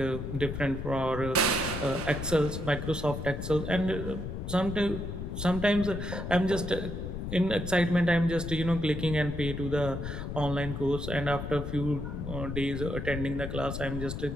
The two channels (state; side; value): noise; left; rumble, 6 dB below the sound